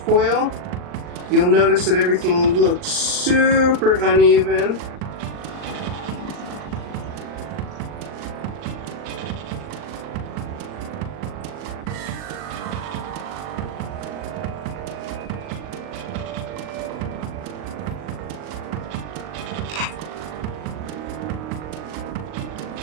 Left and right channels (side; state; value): left; late; 39 ms